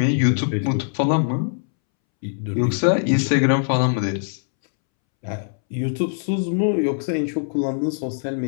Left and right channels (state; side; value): silent; right; 64 dB below the other